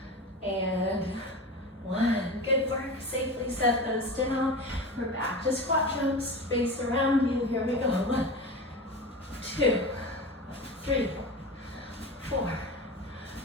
and 1. Good work. Safe safely set those down. We're back to squat jumps, space around you. Here we go. 1, 2, 3, 4,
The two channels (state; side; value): normal; both; correlation 0.29